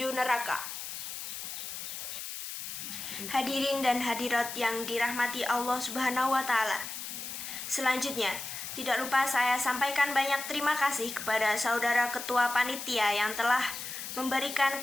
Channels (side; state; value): left; noise; hiss, 7 dB below the sound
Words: neraka. Hadirin dan hadirat yang dirahmati Allah Subhanahu wa Ta'ala. Selanjutnya, tidak lupa saya sampaikan banyak terima kasih kepada saudara ketua panitia yang telah memberikan